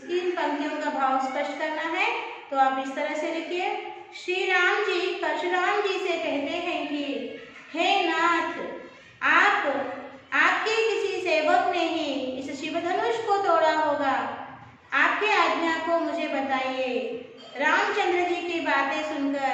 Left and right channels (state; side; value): identical; both; correlation 1.00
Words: पंक्तियों का भाव स्पष्ट करना है, तो आप इस तरह से लिखिए। श्री राम जी परशुराम जी से कहते हैं कि हे नाथ, आपके किसी सेवक ने ही इस शिवधनुष को तोड़ा होगा। आपके आज्ञा को मुझे बताइए। रामचंद्र जी की बातें